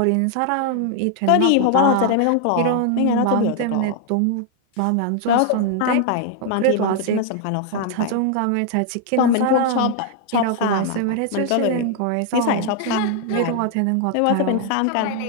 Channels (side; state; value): both; different; correlation 0.00